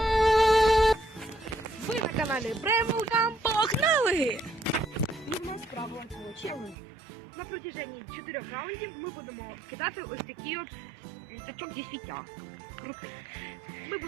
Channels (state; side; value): drops out; left; at 6.8 s